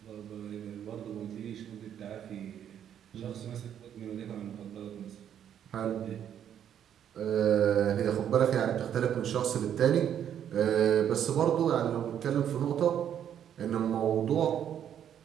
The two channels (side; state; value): left; quieter; 9.5 dB